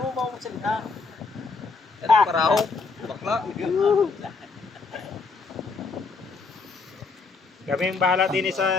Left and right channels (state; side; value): quieter; right; 4.3 dB